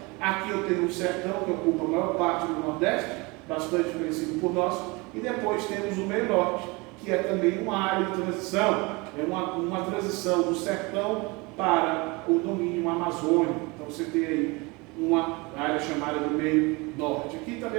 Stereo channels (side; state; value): left; quieter; 26.0 dB